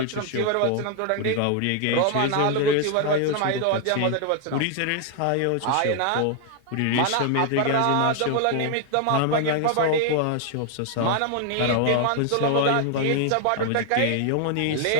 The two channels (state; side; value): different; both; correlation 0.00